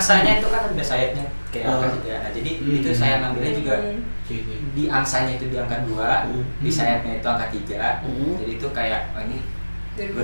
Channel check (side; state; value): both; inverted; correlation -1.00